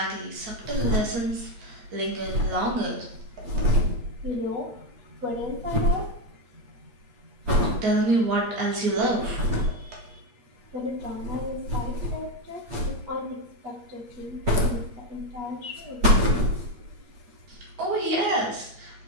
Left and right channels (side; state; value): left; late; 8.6 ms